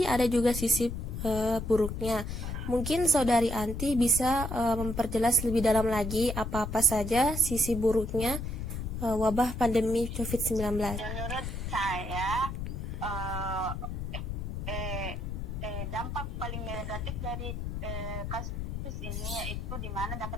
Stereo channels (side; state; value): left; noise; rumble, 5 dB below the sound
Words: ada juga sisi buruknya. Mungkin Saudari Anti bisa memperjelas lebih dalam lagi apa-apa saja sisi buruknya wabah pandemi COVID-19. Menurut saya dampak paling negatif dari kasus ini yaitu di mana